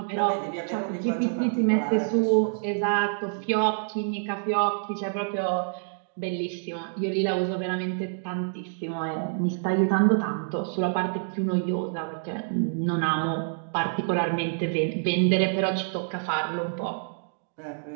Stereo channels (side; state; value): left; silent; digital silence